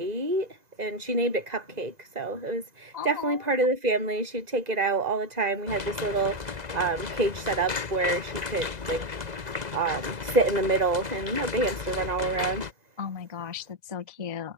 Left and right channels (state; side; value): late; left; 2.0 ms